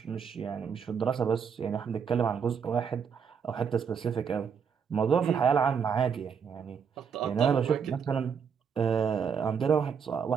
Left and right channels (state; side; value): quieter; left; 6.8 dB